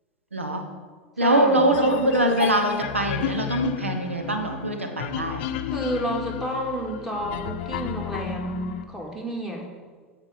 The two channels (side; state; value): both; normal; correlation -0.17